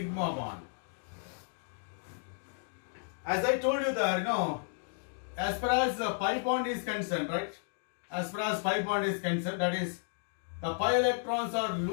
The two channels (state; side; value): silent; right; digital silence